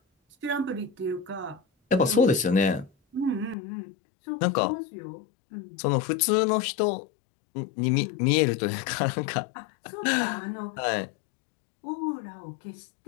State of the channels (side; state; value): right; drops out; at 3.6 s